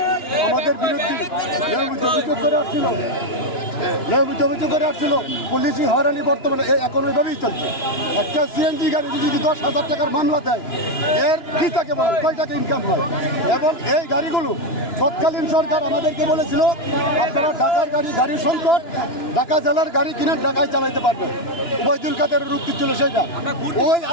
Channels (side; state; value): right; late; 2.9 ms